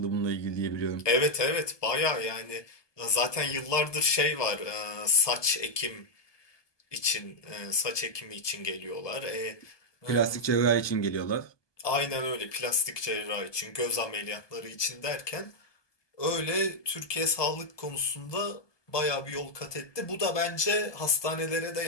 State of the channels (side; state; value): right; late; 1.2 ms